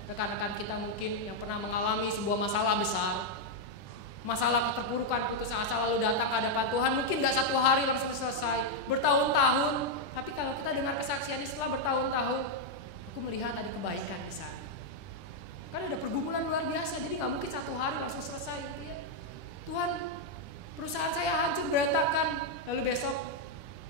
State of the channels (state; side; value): late; right; 10 ms